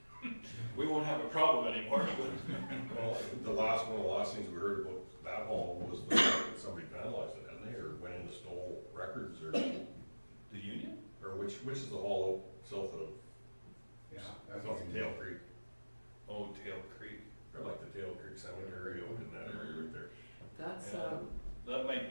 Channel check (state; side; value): inverted; both; correlation -1.00